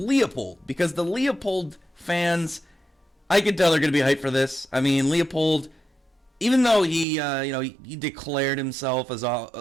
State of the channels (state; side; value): drops out; left; at 7.1 s